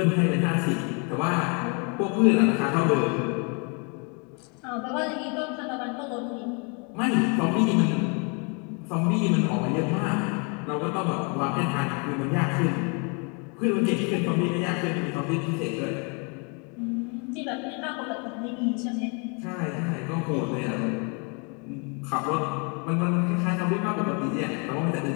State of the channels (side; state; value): right; quieter; 34.8 dB